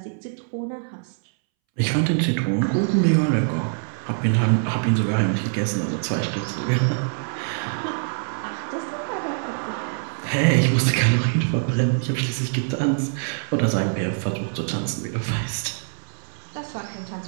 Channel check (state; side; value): silent; left; 63 dB below the other